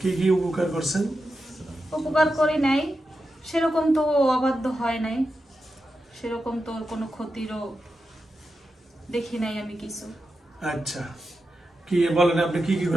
কি কি উপকার করছেন? উপকার করি নাই, সেরকম তো ও অবাধ্য হয় নাই, সেরকম তো ওর কোনো ক্ষতিরও দেখি নাই আমি কিছু। আচ্ছা, কি বলেন আপনি কি কি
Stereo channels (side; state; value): both; normal; correlation 0.89